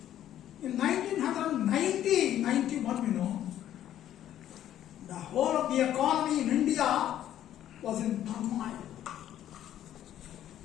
In 1991, the whole of the economy in India was in turmoil.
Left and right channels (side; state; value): right; quieter; 11.6 dB